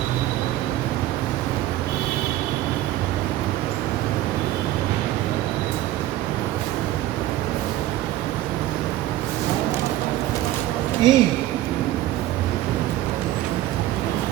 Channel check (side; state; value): left; quieter; 14.5 dB